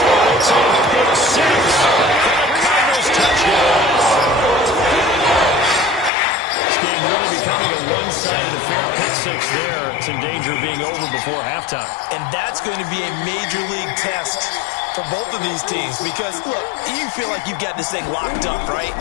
It's a pick six for the Cardinals touchdown. This game really becoming a one-sided affair. Pick six there. It's in danger of being over before halftime. And that's going to be a major league test for both of these teams because, look, you feel like you've got this thing locked up, right?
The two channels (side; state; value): right; drops out; at 6.1 s